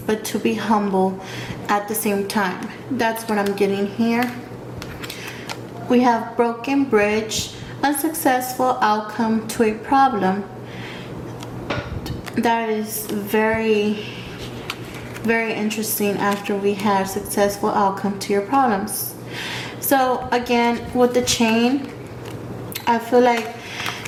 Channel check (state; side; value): identical; both; correlation 1.00